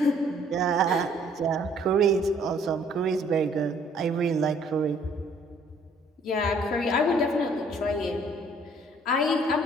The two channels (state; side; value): normal; both; correlation 0.60